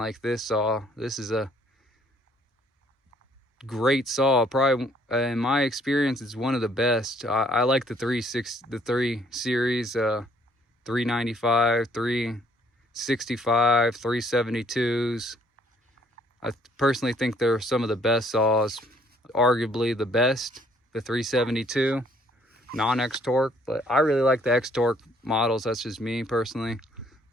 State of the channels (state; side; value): normal; both; correlation 0.63